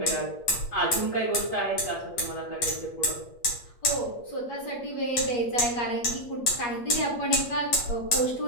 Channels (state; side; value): late; right; 8.4 ms